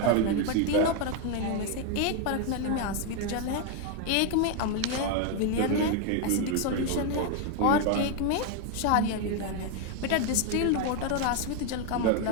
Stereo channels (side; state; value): both; different; correlation 0.01